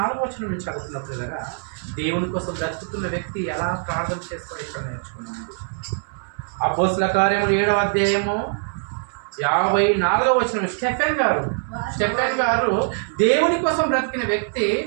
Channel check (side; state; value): left; silent; 64 dB below the other